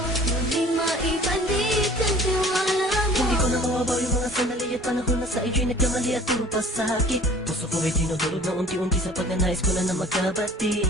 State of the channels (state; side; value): normal; both; correlation 0.48